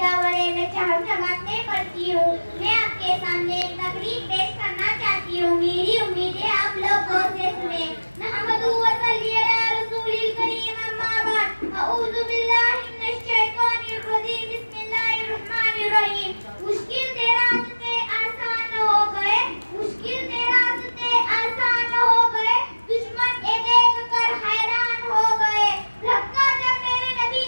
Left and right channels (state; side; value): inverted; both; correlation -1.00